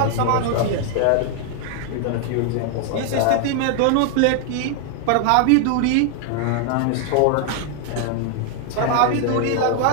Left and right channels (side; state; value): both; different; correlation 0.00